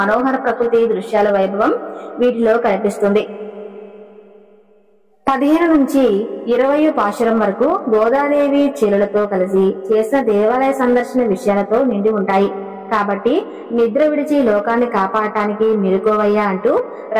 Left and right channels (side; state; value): both; identical; correlation 1.00